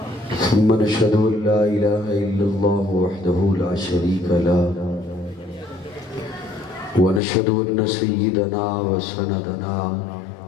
ثم نشهد أن لا إله إلا الله وحده لا شريك له ونشهد أن سيدنا وسندنا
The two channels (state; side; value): drops out; right; at 7.2 s